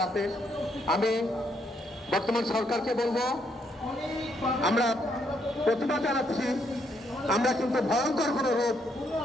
আমি বর্তমান সরকারকে বলবো, আমরা প্রতিবাদ জানাচ্ছি, আমরা কিন্তু ভয়ঙ্কর কোনো রূপ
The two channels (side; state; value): both; normal; correlation 0.74